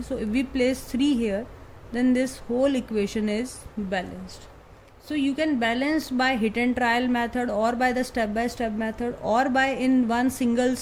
So if we place 3 here, then this whole equation is balanced. So you can balance by hit and trial method, or by the step by step method, or by in one single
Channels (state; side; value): identical; both; correlation 1.00